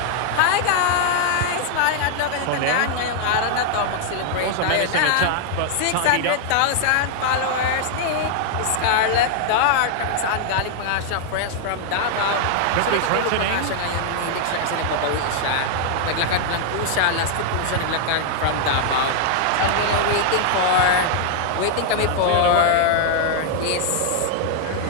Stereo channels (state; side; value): different; both; correlation 0.00